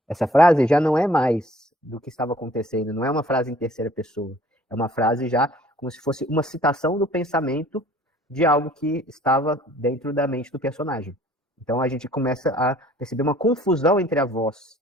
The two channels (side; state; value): both; normal; correlation 0.55